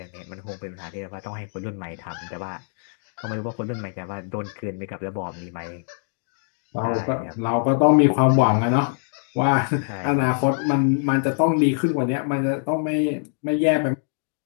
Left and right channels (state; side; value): silent; right; digital silence